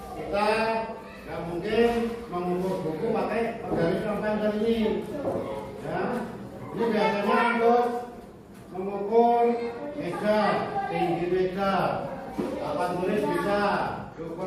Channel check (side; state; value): both; identical; correlation 1.00